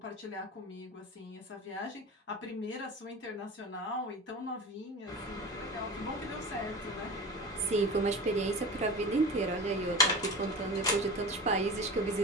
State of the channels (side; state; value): both; normal; correlation 0.31